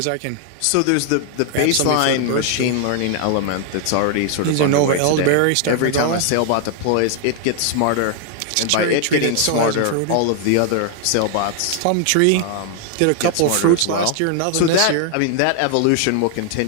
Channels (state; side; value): different; both; correlation 0.00